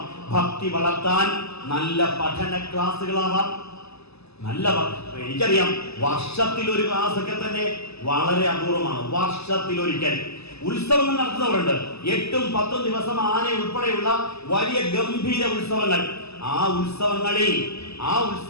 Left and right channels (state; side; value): late; right; 0.79 ms